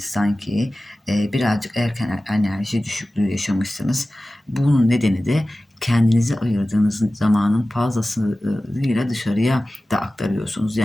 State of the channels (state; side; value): normal; both; correlation 0.96